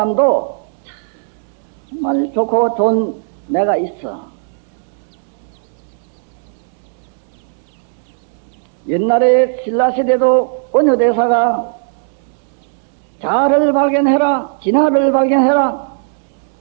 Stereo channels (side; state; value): left; silent; digital silence